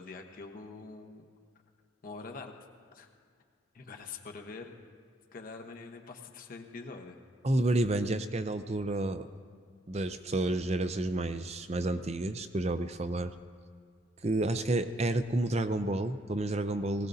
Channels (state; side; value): normal; both; correlation 0.71